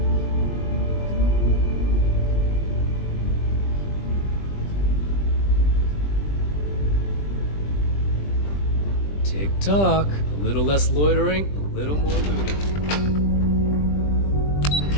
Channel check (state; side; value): late; right; 20 ms